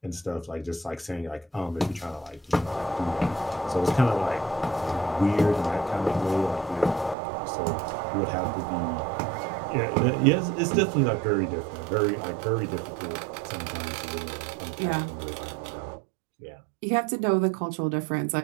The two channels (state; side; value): drops out; left; at 7.2 s